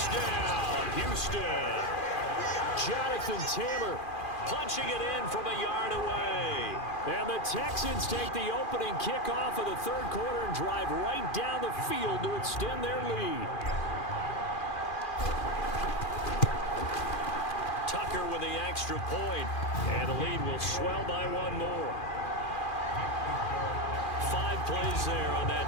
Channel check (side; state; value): right; late; 2.4 ms